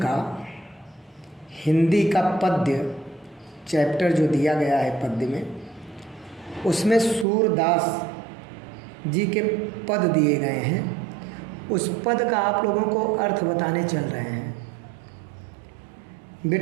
हिंदी का पद्य चैप्टर जो दिया गया है पद्य में, उसमें सूरदास जी के पद दिए गए हैं। उस पद का आप लोगों को अर्थ बताने चल रहे हैं।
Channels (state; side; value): drops out; left; at 7.2 s